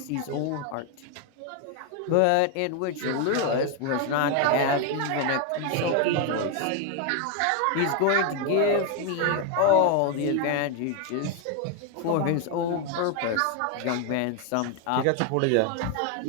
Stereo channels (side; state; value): both; different; correlation 0.01